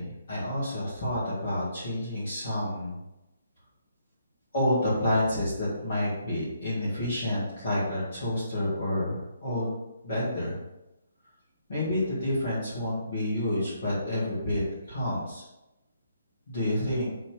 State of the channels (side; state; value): both; inverted; correlation -0.73